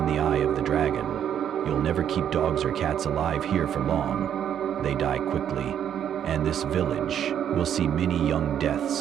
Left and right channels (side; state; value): left; quieter; 9.4 dB